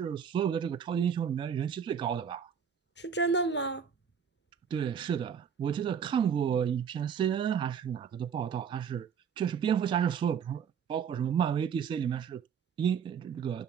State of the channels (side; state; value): left; quieter; 7.4 dB